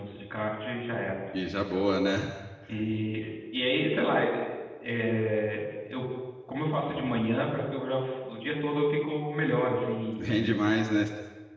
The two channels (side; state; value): both; identical; correlation 1.00